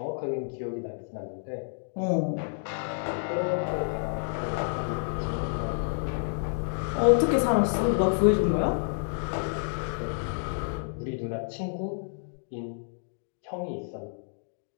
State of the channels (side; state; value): right; silent; digital silence